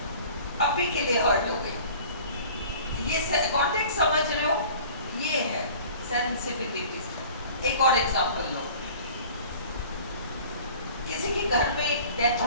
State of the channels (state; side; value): inverted; both; correlation -0.45